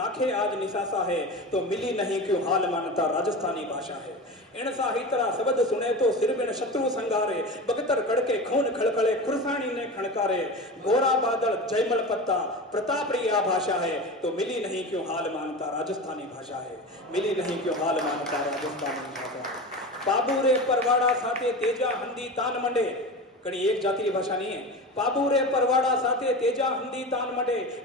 आज निसासा है तो मिली नहीं क्यों हाल मानता राजस्थानी भाषा है। इन साहित्रा शब्द सुने तो सिर बिन शत्रु संगारे बगतर कड़के खून खड़खड़े खुरसानी ने खड़कारे गोरा बादल जयमल पत्ता प्रताप रिया भाषा है तो मिली नहीं क्यों हाल मानता राजस्थानी भाषा है। मिली नहीं क्यों हाल मानता राजस्थानी भाषा। बाबू रे परवाड़ा साथे तेजा हंदी तान मंडे कड़ी एक जाति की भाषा नहीं है। पाबू रे परवाड़ा साथे तेजा हंदी तान मडे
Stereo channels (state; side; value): normal; both; correlation 0.28